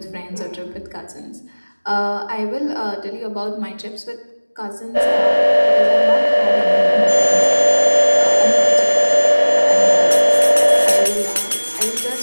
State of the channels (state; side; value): inverted; both; correlation -1.00